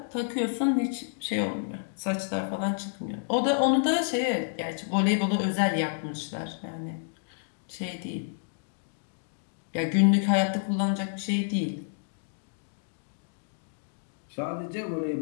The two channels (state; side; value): silent; right; digital silence